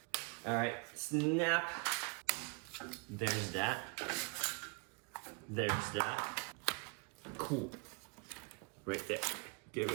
All right, snap. There's that. There's that. Cool. Right there. Give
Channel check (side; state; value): left; quieter; 32.2 dB